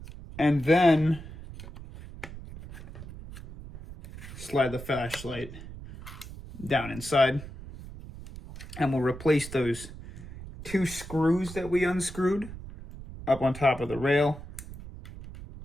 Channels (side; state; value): right; noise; rumble, 14 dB below the sound